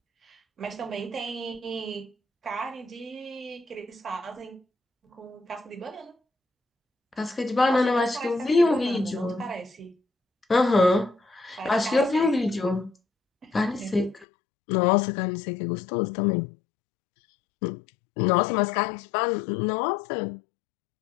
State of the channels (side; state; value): right; drops out; at 14.2 s